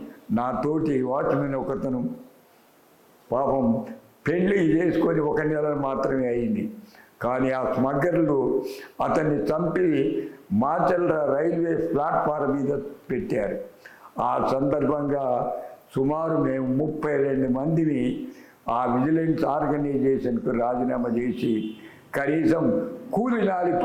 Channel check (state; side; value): identical; both; correlation 1.00